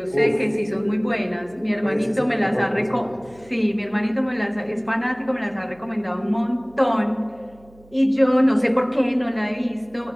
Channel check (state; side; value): noise; right; hum, 27 dB below the sound